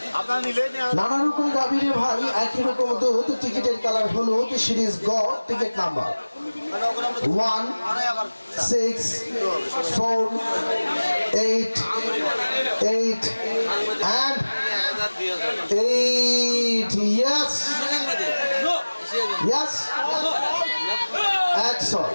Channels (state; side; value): inverted; both; correlation -1.00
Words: নানা রকম গাভীরে ভাই, একই রকম দুধ। টিকিটের কালার হলুদ, সিরিজ গ, ticket number 1 6 4 8 8 and 8 yes yes 100